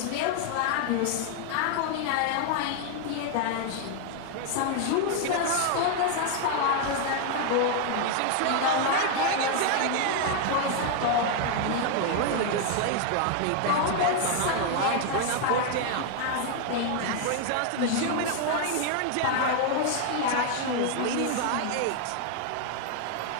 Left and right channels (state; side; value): different; both; correlation 0.00